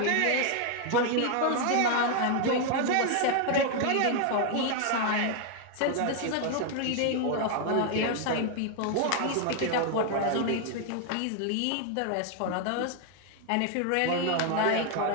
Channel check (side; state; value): both; different; correlation 0.00